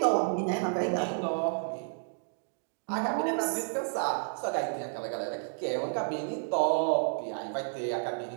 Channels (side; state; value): left; silent; digital silence